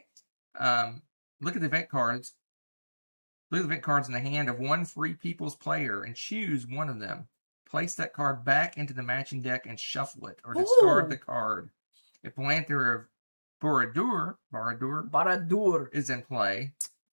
Look at the event cards. Look at the event cards in the hand of one Free People's player and choose one of them. Place that card back into the matching deck and shuffle it, or discard the card. If Lanther of Baradur Baradur. is in play.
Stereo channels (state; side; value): inverted; both; correlation -1.00